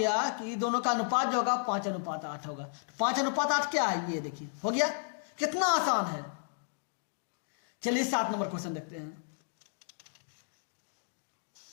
कि दोनों का अनुपात जो होगा 5:8 होगा। तो 5:8 क्या है, ये देखिए हो गया। कितना आसान है। चलिए 7 नंबर क्वेश्चन देखते हैं।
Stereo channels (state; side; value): silent; right; digital silence